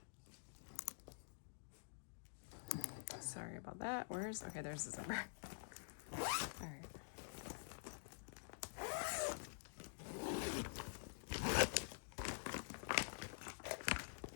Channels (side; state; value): right; silent; digital silence